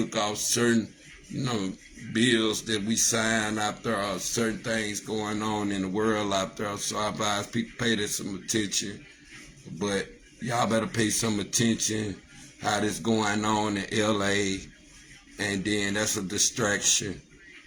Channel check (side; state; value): both; identical; correlation 1.00